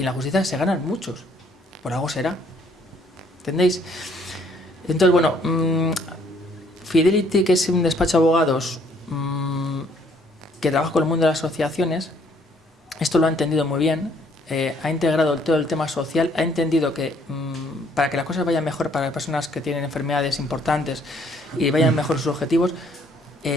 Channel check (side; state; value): both; normal; correlation 0.64